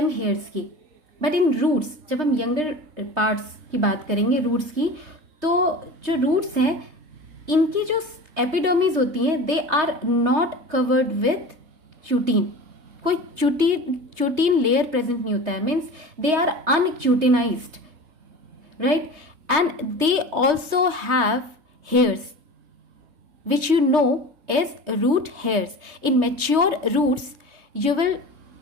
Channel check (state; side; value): late; left; 3.2 ms